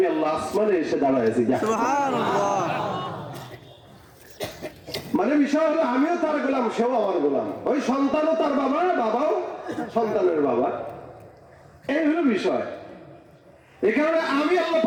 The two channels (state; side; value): identical; both; correlation 1.00